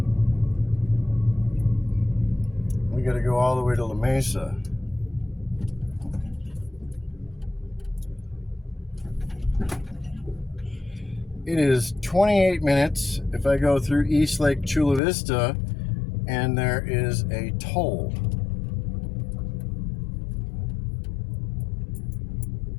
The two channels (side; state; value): right; drops out; at 15.0 s